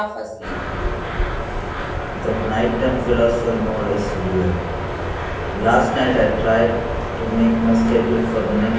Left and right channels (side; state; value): both; identical; correlation 1.00